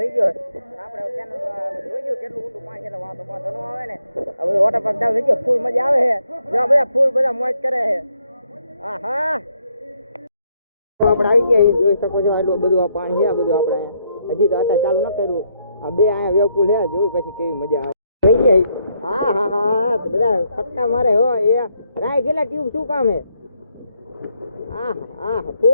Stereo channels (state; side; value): inverted; both; correlation -0.75